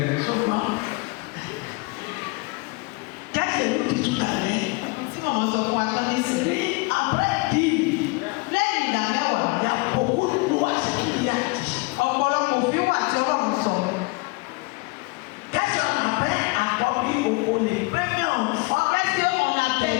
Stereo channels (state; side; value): quieter; right; 26.8 dB